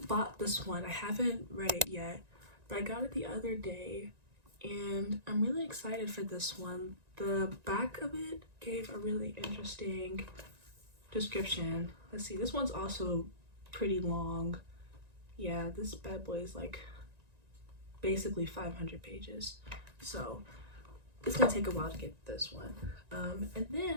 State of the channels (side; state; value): left; late; 1.9 ms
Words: bought this one. I haven't read it yet, but I got it the other day, and I'm really excited for this one. The back of it gave a really interesting description. Let's see, this one's also pretty long. Yeah, this bad boy is like basically 500 pages, so it's gonna take a while to get this one. And